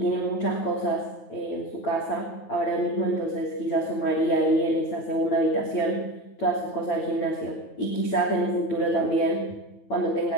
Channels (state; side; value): late; right; 9.3 ms